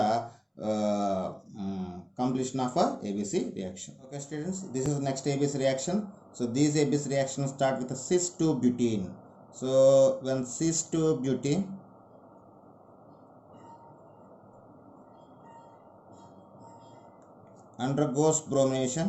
completion of a ABC reaction. Okay students, this is the next ABC reaction. So these ABC reactions start with a cis-2-butene. So when cis-2-butene undergoes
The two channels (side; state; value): both; identical; correlation 1.00